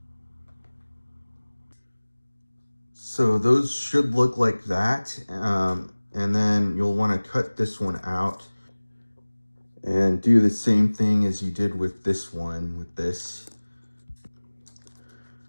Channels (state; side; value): inverted; both; correlation -1.00